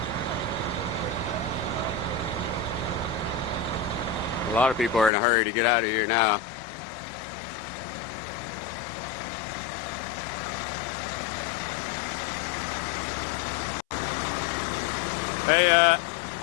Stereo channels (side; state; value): right; drops out; at 5.1 s